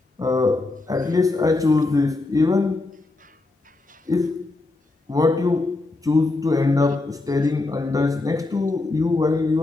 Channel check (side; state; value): right; quieter; 3.2 dB